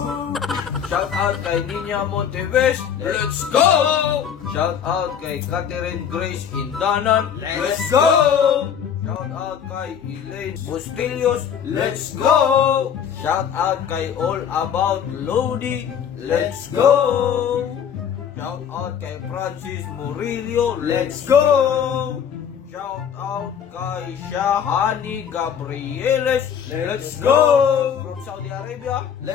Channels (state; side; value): quieter; right; 8.2 dB